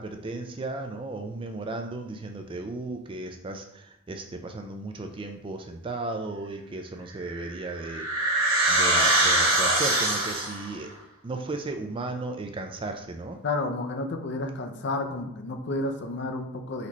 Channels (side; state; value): both; normal; correlation 0.10